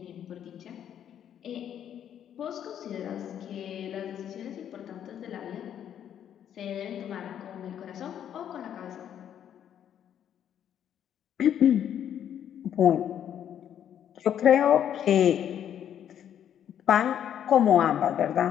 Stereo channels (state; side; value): quieter; right; 9.7 dB